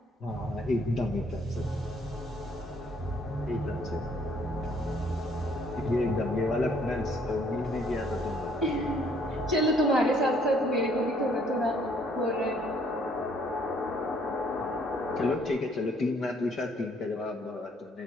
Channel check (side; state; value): both; normal; correlation 0.64